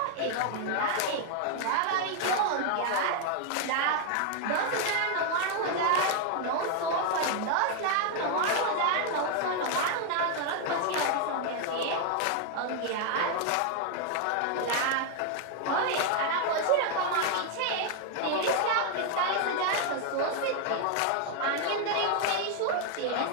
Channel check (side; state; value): both; different; correlation 0.00